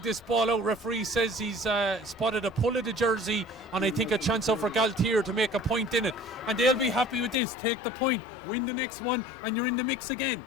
this ball out. Referee says he's spotted a pull of the jersey, and I think a chance out for Gaultier to make a point in it. And they'll be happy with this. Take the point, win the next one, and you're in the mix again.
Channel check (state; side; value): drops out; right; at 7.4 s